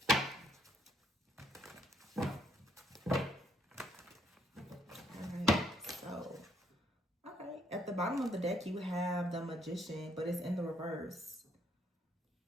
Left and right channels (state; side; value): normal; both; correlation 0.70